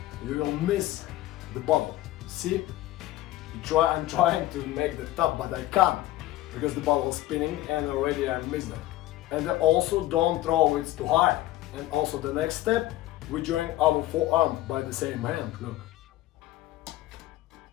you will miss the bottle. See? I'm trying to make the top, but I can't because the bottle is spinning and already I missed it. And also don't throw it too high. And also the next step, we join our forearm by the same hand, look.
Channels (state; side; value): quieter; right; 15.8 dB